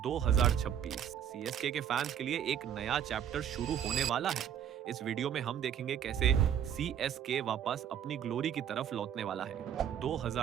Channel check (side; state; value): left; quieter; 9.2 dB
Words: 2026 CSK के fans के लिए एक नया चैप्टर शुरू होने वाला है। इस वीडियो में हम देखेंगे कैसे सीएसके वापस अपनी ग्लोरी की तरफ लौटने वाला है।